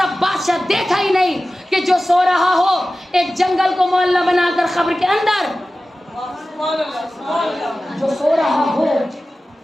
بادشاہ دیکھا ہی نہیں کہ جو سو رہا ہو ایک جنگل کو محلہ بنا کر قبر کے اندر، جو سو رہا ہو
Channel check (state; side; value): normal; both; correlation 0.95